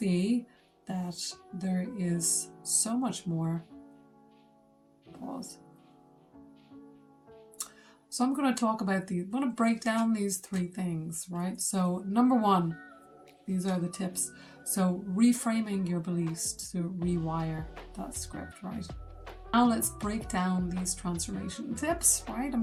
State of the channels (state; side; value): identical; both; correlation 1.00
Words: that there is so much more. Pause. So I'm going to talk about these. I'm going to break down these 3 things, right? So number 1, these are the tips. So reframing your beliefs to rewire that script, right? Now let's break down these transformation tips, right?